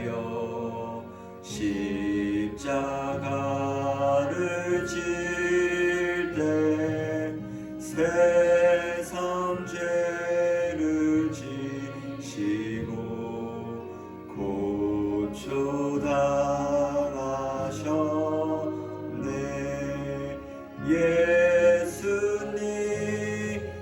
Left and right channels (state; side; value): identical; both; correlation 1.00